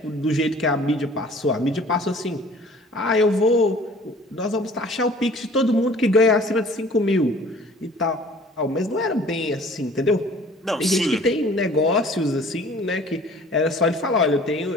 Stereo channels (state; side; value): normal; both; correlation 0.50